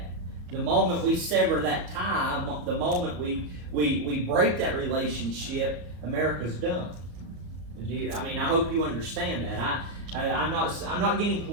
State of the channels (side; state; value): left; late; 34 ms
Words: The moment we sever that tie, the moment we break that relationship, America's done. I hope you understand that. I'm not getting